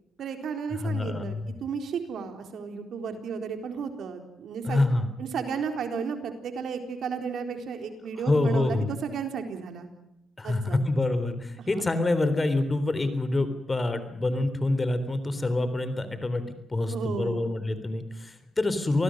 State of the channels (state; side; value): normal; both; correlation 0.87